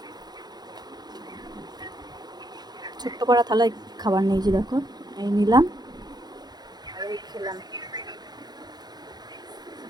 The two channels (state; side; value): late; left; 0.20 ms